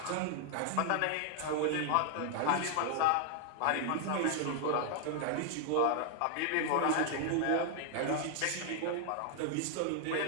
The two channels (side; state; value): both; different; correlation 0.00